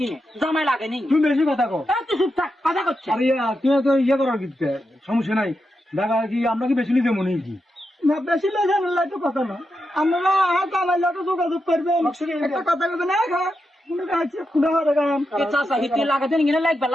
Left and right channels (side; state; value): both; normal; correlation 0.87